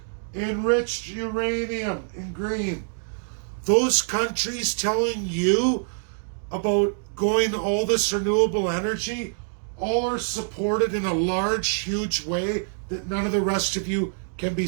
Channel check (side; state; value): left; silent; digital silence